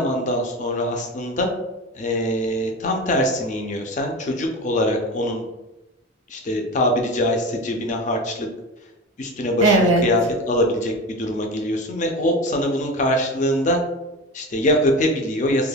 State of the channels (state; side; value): normal; both; correlation 0.27